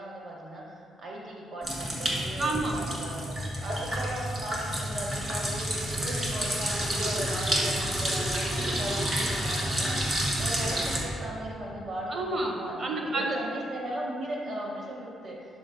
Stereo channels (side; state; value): both; normal; correlation 0.79